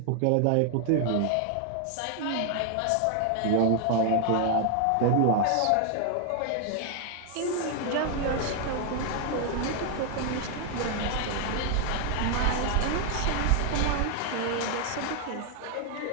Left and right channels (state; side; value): different; both; correlation 0.00